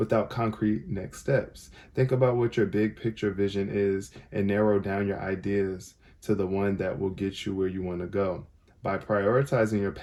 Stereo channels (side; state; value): both; identical; correlation 1.00